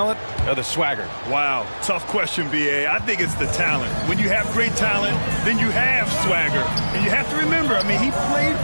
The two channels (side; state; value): both; inverted; correlation -1.00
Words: or the swagger? Wow, tough question, B.A. I think it's the talent. When you have great talent, then you have swagger. And you have to remember, I mean, he played